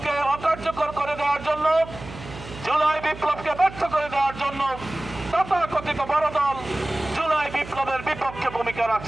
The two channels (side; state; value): right; noise; hum, 14 dB below the sound